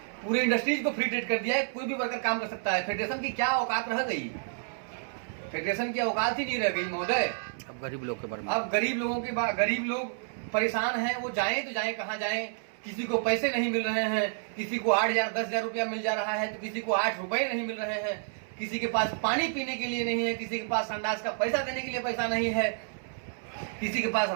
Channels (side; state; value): left; silent; 58 dB below the other